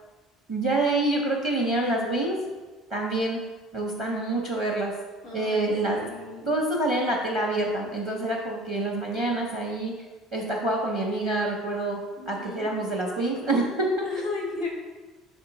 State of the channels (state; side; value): normal; both; correlation 0.43